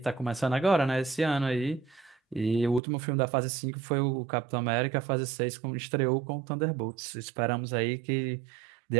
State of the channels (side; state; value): left; drops out; at 2.8 s